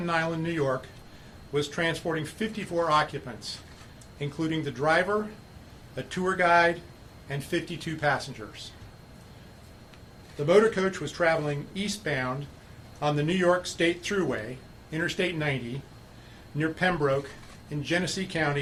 Island, New York, was transporting 54 occupants, including the driver, a tour guide, and 52 passengers. The motor coach was traveling eastbound on the New York State Thruway, Interstate 90, near Pembroke in Genesee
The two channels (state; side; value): identical; both; correlation 1.00